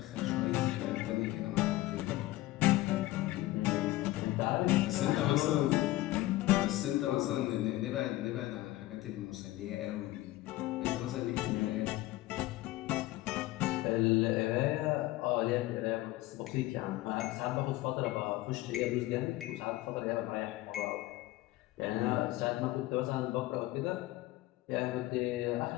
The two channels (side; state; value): right; quieter; 17.4 dB